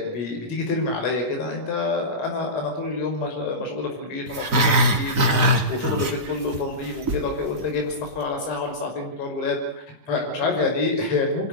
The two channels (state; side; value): late; left; 4.0 ms